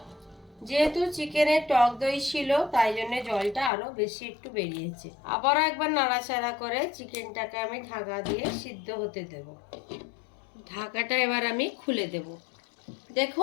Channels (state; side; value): drops out; right; at 3.7 s